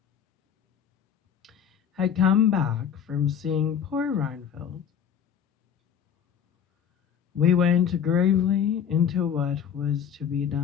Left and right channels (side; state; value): right; quieter; 8.3 dB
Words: had come back from seeing poor Reinfeldt, we went gravely into what was to be